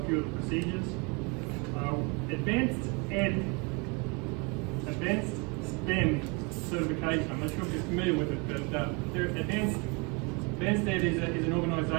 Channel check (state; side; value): quieter; left; 30.7 dB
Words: few of the procedures. Advanced STEM certification. I'm not sure if you're familiar with it, but Advanced Ed is an